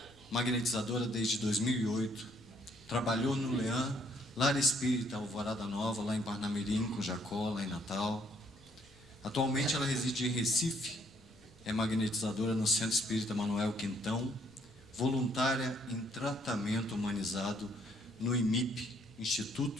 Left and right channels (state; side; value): noise; left; rumble, 27 dB below the sound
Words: magnetizadora desde 2008, trabalhou no Leã, Lar Espírita Alvorada Nova, lá em Parnamirim, com Jacó, lá em Natal. Atualmente ela reside em Recife, é magnetizadora no Centro Espírita Manuel Quintão, voluntária em tratamento humanizado no IMIP,